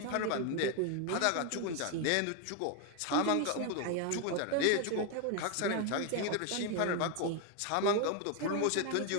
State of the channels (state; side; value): different; both; correlation 0.01